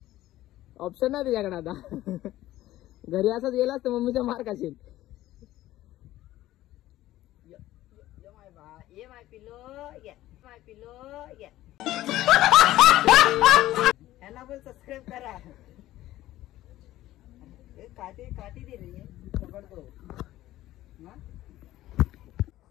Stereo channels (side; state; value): right; quieter; 15.1 dB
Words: ऑप्शन नाही तुझ्याकडे आता. घरी असंच गेलास तर मम्मीचा मार खाशील. ह्याला पण सबस्क्राईब करा. काठी दे रे. पकडतो.